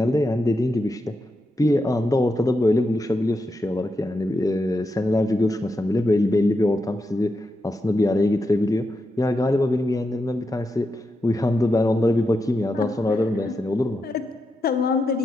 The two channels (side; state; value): both; normal; correlation 0.86